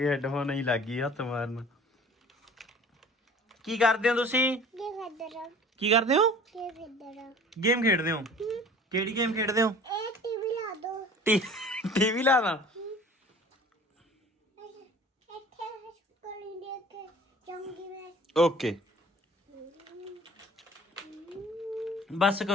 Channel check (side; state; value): both; normal; correlation 0.46